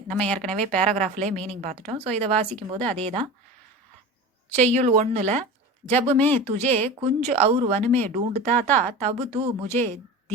நம்ம ஏற்கனவே பேராகிராஃப்லேயே மீனிங் பார்த்துட்டோம். ஸோ இதை வாசிக்கும் போது அதே தான். செய்யுள் 1ல் जब मैं तुझे कुंज और वन में ढूंढता था, तब तू मुझे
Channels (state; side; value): normal; both; correlation 0.32